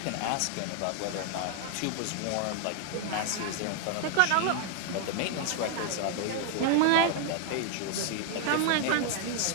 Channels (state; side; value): different; both; correlation 0.00